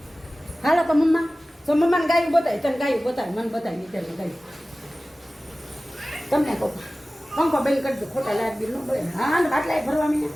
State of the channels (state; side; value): normal; both; correlation 0.97